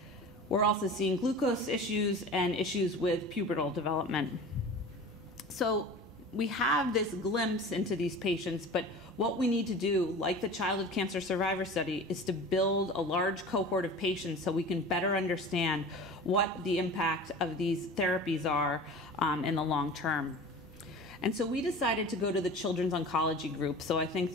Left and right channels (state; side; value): normal; both; correlation 0.37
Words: We're also seeing glucose issues and issues with pubertal development. So we have this glimpse into these patients, but what we need to do, like the Childhood Cancer Survivor Study, is to build a large cohort of patients so we can better understand what the impact of these therapies are in the long term. And so we decided to go to the Children's Oncology Group. So I think